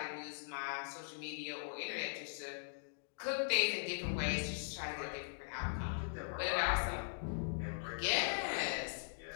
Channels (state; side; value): silent; right; digital silence